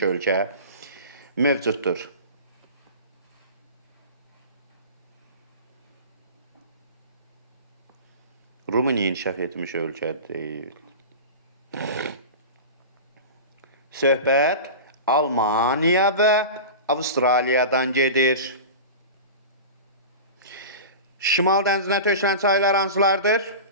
ölkə mövcuddur? Rumıniya inkişaf etmiş ölkə deyil. Söhbət Almaniya və Avustraliyadan gedir. Şimal dənizinə tökülən çaylar hansılardır?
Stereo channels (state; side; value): inverted; both; correlation -0.31